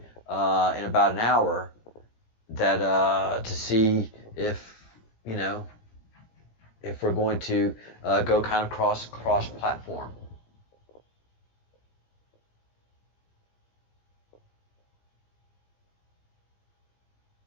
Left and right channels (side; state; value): right; late; 18 ms